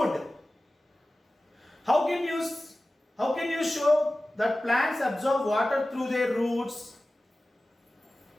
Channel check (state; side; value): normal; both; correlation 0.96